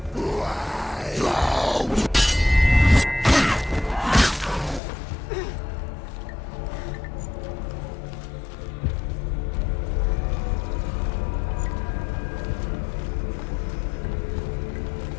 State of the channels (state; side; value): drops out; right; at 4.8 s